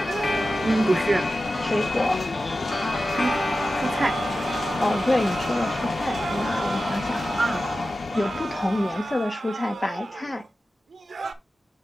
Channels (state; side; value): normal; both; correlation 0.94